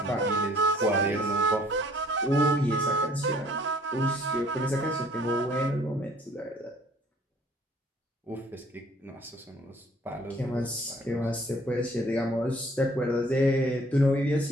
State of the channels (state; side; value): normal; both; correlation 0.57